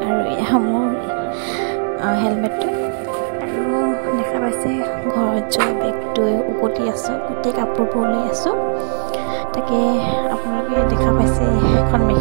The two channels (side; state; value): left; silent; digital silence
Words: আৰু এয়া মোৰ হেলমেটটো আৰু দেখা পাইছে ঘৰত যোৱা বেগটো উকটি আছোঁ, গোটেই কাপোৰবোৰ লৈ আছোঁ। তাকে আপোনালোকে দেখা পাইছে এখন